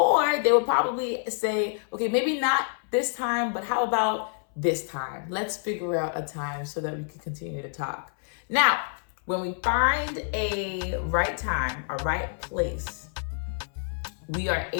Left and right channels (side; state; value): right; silent; 60 dB below the other